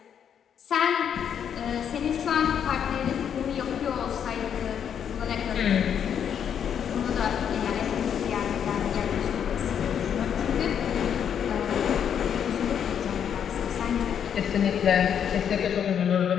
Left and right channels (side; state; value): right; quieter; 8.4 dB